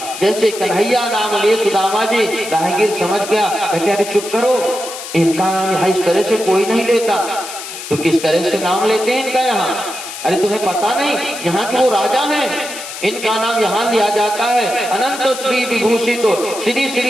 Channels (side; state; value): left; noise; hiss, 10 dB below the sound